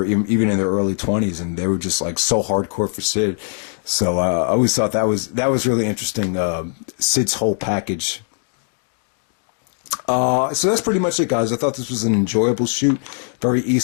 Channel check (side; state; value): right; silent; 66 dB below the other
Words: even in their early 20s, and they were just like so hardcore for Sid. So I always thought that was really interesting. Sid's whole package. So that's pretty much it, guys. I thought this was an enjoyable shoot, very